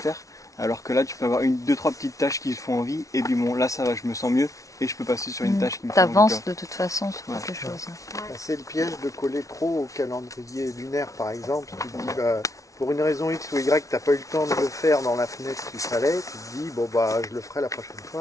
alors que là tu peux avoir 2-3 petites tâches qui te font envie, et puis bon là ça va, je me sens mieux, et je peux passer sur une tâche qui me fait envie. T'avances de toute façon sur quelque chose. C'est le piège de coller trop au calendrier lunaire par exemple. Tu te dis pour une raison X ou Y, t'as pas eu le temps de le faire dans la fenêtre qu'il fallait, tu te dis je le ferai la prochaine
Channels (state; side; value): late; right; 0.16 ms